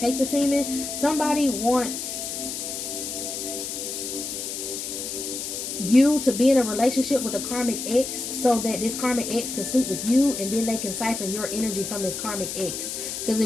the semen. Somebody wants you to be in a relationship with a karmic ex so that this karmic ex can sleep with you, and then they can siphon your energy from this karmic ex, because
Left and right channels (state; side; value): noise; left; hiss, 5 dB below the sound